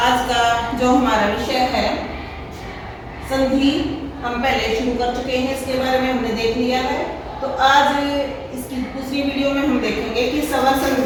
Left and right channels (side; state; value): both; identical; correlation 1.00